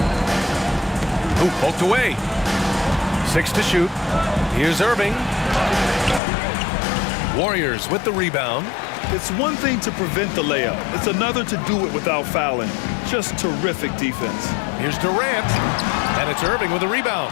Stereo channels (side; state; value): right; drops out; at 6.2 s